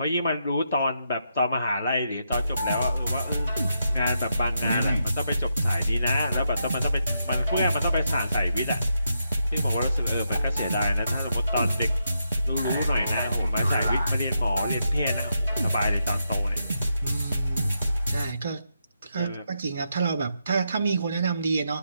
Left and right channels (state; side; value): inverted; both; correlation -0.82